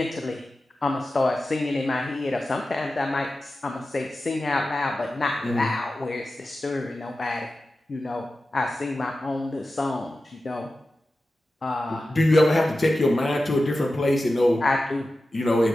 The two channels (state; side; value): normal; both; correlation 0.94